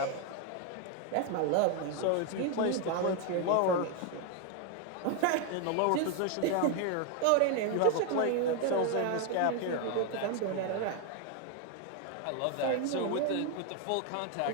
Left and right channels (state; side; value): different; both; correlation 0.01